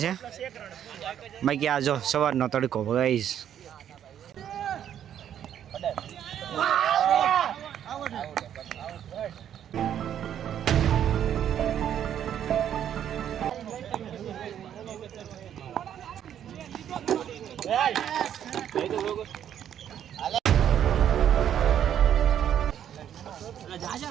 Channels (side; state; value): left; quieter; 9.9 dB